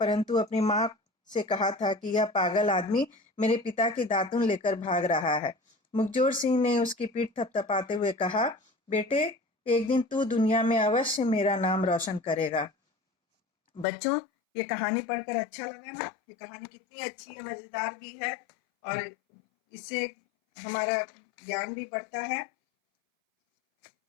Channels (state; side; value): drops out; right; at 13.9 s